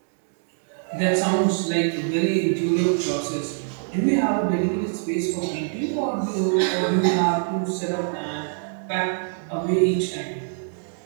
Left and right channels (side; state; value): left; silent; digital silence